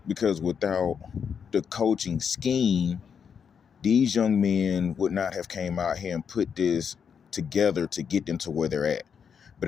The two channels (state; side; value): quieter; right; 7.0 dB